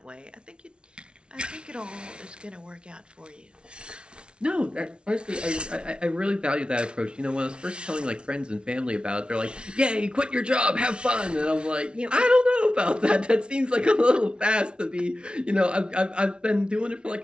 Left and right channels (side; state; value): left; late; 0.057 ms